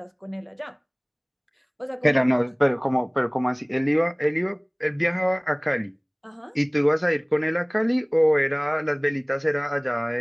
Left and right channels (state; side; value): identical; both; correlation 1.00